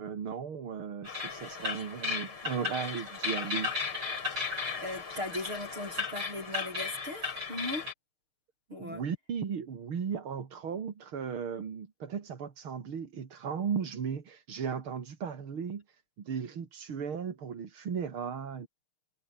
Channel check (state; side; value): late; left; 6.5 ms